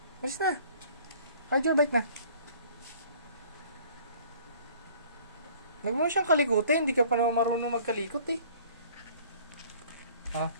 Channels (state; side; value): inverted; both; correlation -0.52